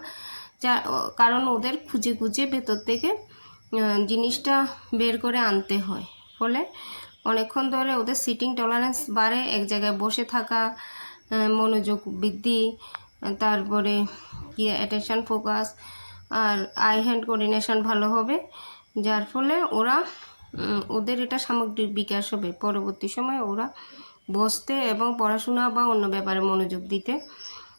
কারণ ওদের খুঁজে ভেতর থেকে জিনিসটা বের করে আনতে হয়। ফলে অনেকক্ষণ ধরে ওদের সিটিং টলারেন্স বাড়ে, এক জায়গায় বসে থাকা, মনোযোগ বৃদ্ধি, তারপরে কি অ্যাটেনশন, ফোকাস আর আই হ্যান্ড কোঅর্ডিনেশন ভালো হবে, যার ফলে ওদের এটা সামগ্রিক বিকাশ হবে। পরবর্তী সময়ে ওরা বসতে এবং পড়াশোনা বা অন্য ব্যাপারে মনোযোগ দিতে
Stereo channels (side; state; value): both; inverted; correlation -1.00